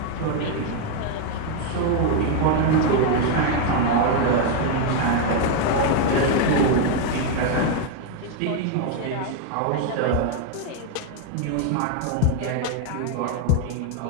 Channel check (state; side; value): different; both; correlation 0.01